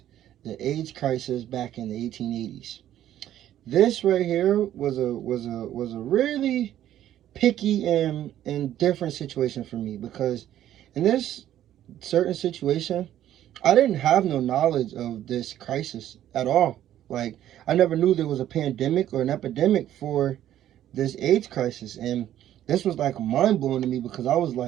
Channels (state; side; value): quieter; left; 12.0 dB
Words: the AIDS crisis back in the 1880s. This right here was a really picky and different situation for me, because in this certain situation, I didn't have no knowledge of this crisis at all. Like, I never knew there was a pandemic or an epidemic for this AIDS crisis, and this was like mind-blowing to me, because I was